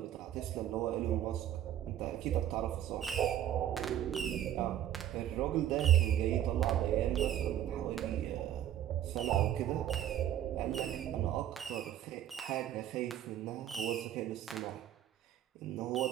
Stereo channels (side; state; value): left; quieter; 11.1 dB